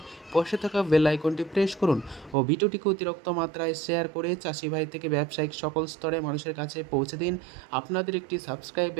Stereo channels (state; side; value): drops out; left; at 2.4 s